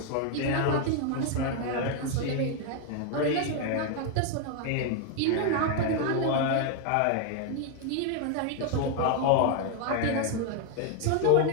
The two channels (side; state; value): both; different; correlation 0.00